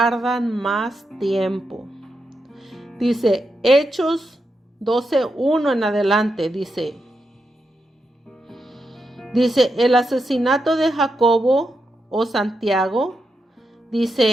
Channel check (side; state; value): both; normal; correlation 0.85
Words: más tiempo. Dice Hechos 12:1 en adelante, dice el asesinato de Jacobo o Santiago,